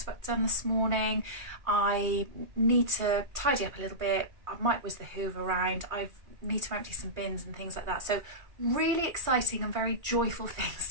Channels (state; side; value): late; left; 2.4 ms